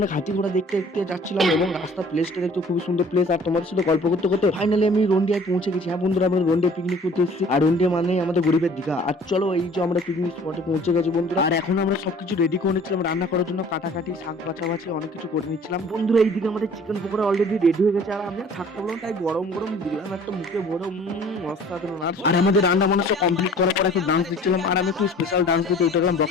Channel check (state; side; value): normal; both; correlation 0.50